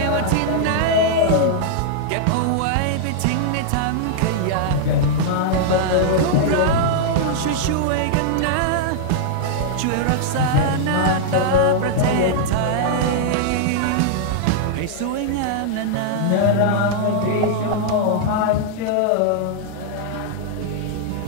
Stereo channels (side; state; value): both; different; correlation -0.01